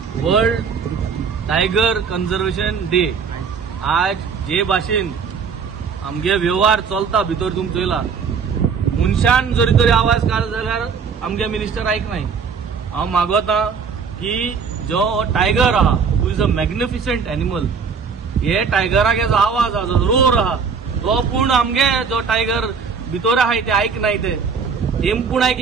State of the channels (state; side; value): quieter; left; 5.9 dB